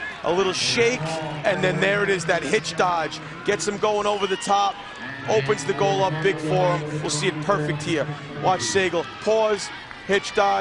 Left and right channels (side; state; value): both; identical; correlation 1.00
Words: A little shake, and then there it is, that hitch dodge. Gets him going over the top, opens the goal up big for him. We'll see it perfect here. Watch Sagal, pause, hitch